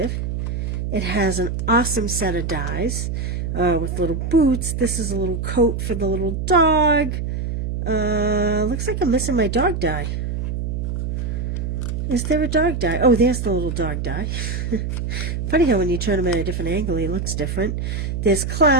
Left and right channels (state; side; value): noise; right; hum, 2 dB below the sound